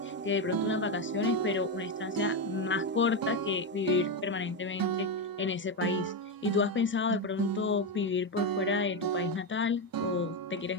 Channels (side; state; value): both; normal; correlation 0.09